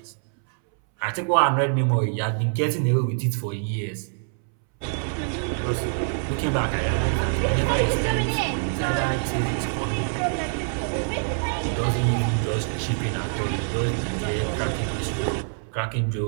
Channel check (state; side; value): silent; left; 62 dB below the other